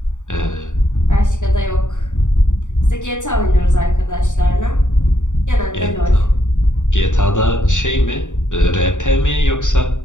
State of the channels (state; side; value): late; right; 0.86 ms